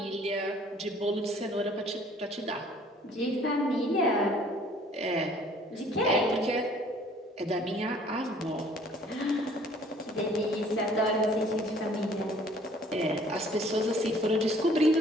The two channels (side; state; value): both; normal; correlation 0.56